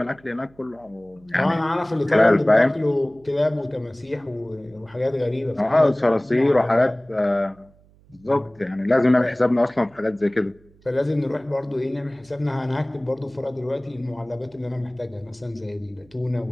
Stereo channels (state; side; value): noise; right; hum, 29 dB below the sound